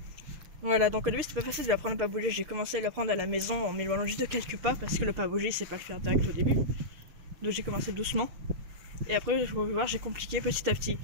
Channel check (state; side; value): late; left; 6.7 ms